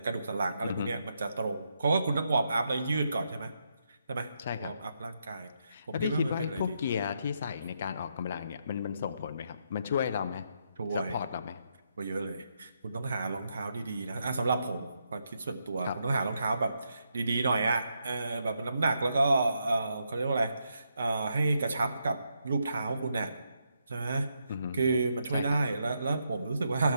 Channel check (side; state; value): both; inverted; correlation -0.80